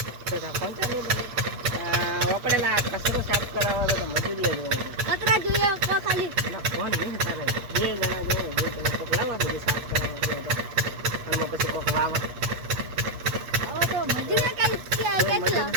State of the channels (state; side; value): late; left; 8.3 ms